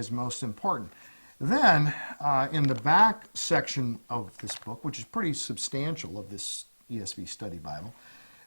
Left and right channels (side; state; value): both; inverted; correlation -1.00